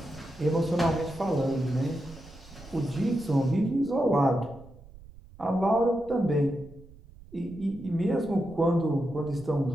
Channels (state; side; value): noise; right; rumble, 20 dB below the sound